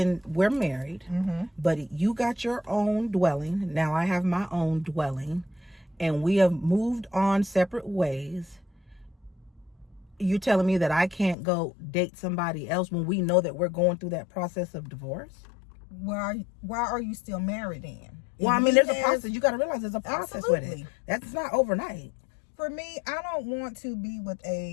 we're married, but you got your own dwelling, now I have my own dwelling, and we have moved on separate ways, you telling me that I can't go date somebody else when we know that we're going through that process of divorce? Why are you still married then? Well, I mean, there's a process. You got to realize there's a process with it. That's not overnight. For me, I don't want to be with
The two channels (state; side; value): drops out; right; at 11.4 s